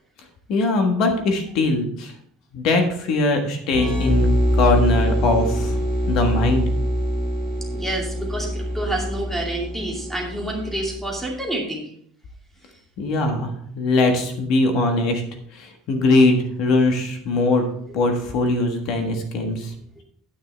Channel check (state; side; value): normal; both; correlation 0.55